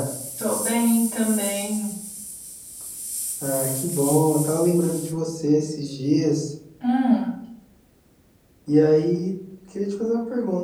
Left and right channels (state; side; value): identical; both; correlation 1.00